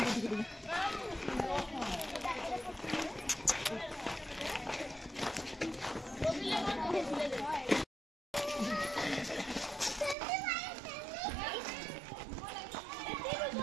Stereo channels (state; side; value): drops out; left; at 10.2 s